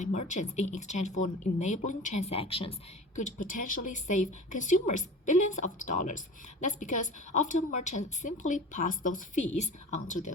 merchants in exchange for enabling transactions, could potentially save consumers billions of dollars. That's because often merchants simply pass those fees on to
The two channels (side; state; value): both; normal; correlation 0.37